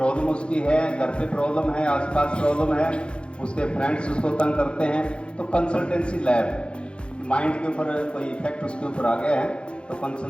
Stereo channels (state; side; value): late; right; 0.056 ms